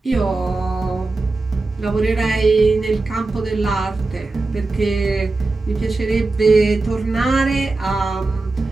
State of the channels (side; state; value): left; quieter; 3.4 dB